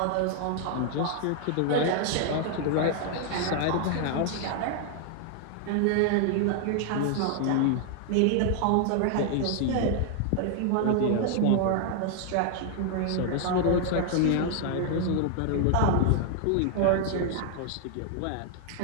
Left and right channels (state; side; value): different; both; correlation 0.00